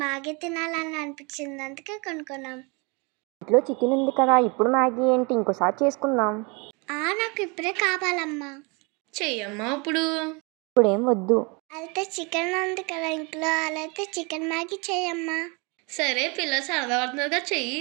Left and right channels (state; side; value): quieter; left; 30.0 dB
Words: మ్యాగీ తినాలని అనిపించింది, అందుకే కొనుక్కున్నాం. ఇంట్లో చికెన్ ఉంది కదా, ఇప్పుడు మ్యాగీ ఏంటి, ఇంకోసారి చేసుకుందాం. నాకు ఇప్పుడే కావాలమ్మా. చెయ్యమ్మా ఇప్పుడు. ఇప్పుడేం వద్దు. అయితే చికెన్ ఉంది కదా ఇంట్లో, అలా అయితే చికెన్ మ్యాగీ చేయమ్మా. సరే, పిల్లలు సరదా పడుతున్నారుగా, చెయ్యి.